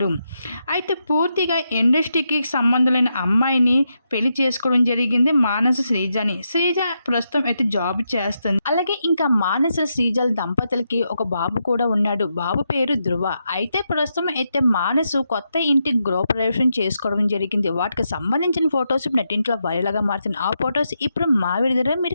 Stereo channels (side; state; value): both; inverted; correlation -0.83